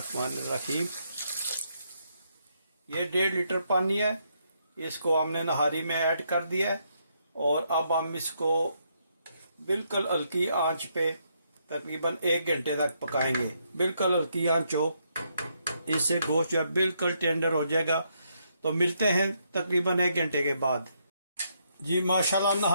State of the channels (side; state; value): both; inverted; correlation -0.76